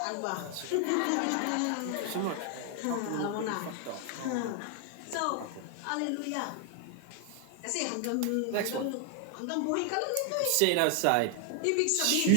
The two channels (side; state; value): both; different; correlation 0.00